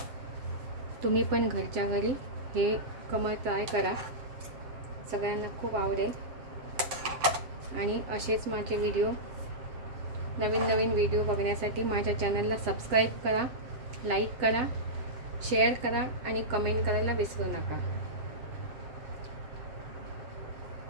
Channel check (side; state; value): left; late; 7.5 ms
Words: तुम्ही पण घरच्या घरी हे कमळ ट्राय करा, सगळ्यांना खूप आवडेल. आणि असेच माझे व्हिडिओ, नवीन नवीन व्हिडिओ बघण्यासाठी माझ्या चॅनलला सबस्क्राईब करा, लाईक करा, शेअर करा आणि कमेंट करायला विसरू नका.